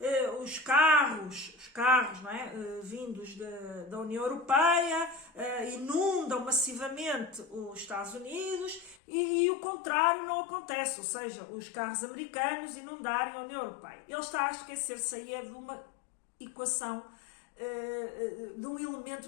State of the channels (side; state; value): right; drops out; at 9.0 s